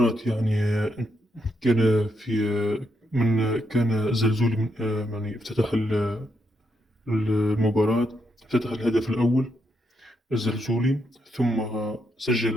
كان في من كان زلزولي من افتتح المباراة. افتتح الهدف الأول الزلزولي، ثم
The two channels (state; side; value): normal; both; correlation 0.79